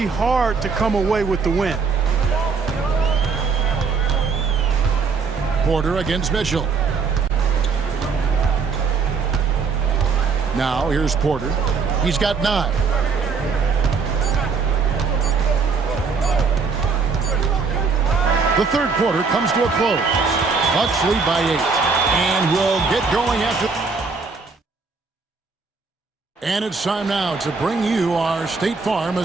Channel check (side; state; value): left; quieter; 5.0 dB